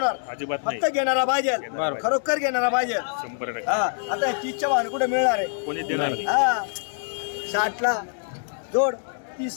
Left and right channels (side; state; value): right; silent; digital silence